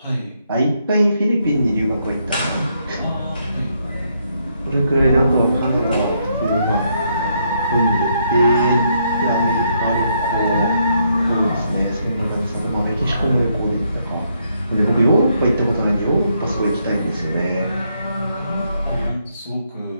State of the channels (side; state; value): both; inverted; correlation -0.75